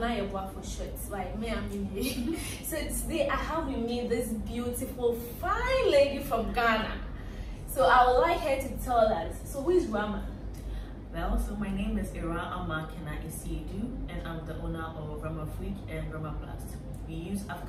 Yeboah for short. Like me, I'm in. So today I have with me this beautiful, fine lady from Ghana. So I would like her to tell us. So who is Rama? Well, so my name is Awurama Kena-Asiedu, and I'm the owner of Ramaplast and Ramaplast. We use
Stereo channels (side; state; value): both; identical; correlation 1.00